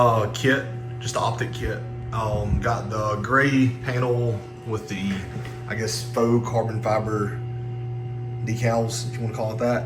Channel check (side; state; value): both; identical; correlation 1.00